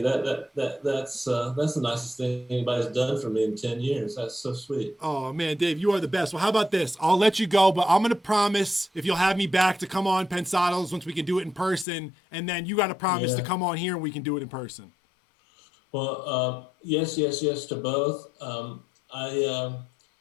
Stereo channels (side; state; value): right; drops out; at 11.9 s